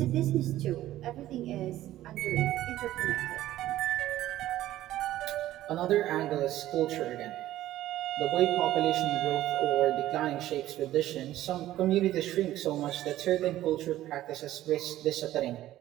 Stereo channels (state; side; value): quieter; left; 14.3 dB